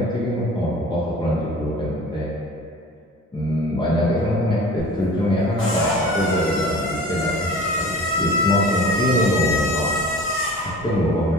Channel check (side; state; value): both; normal; correlation 0.41